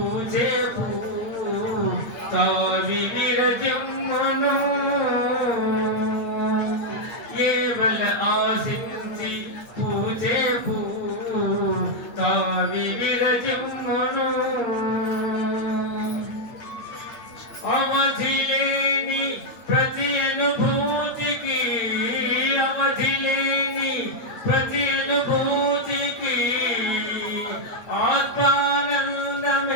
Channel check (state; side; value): late; right; 8.9 ms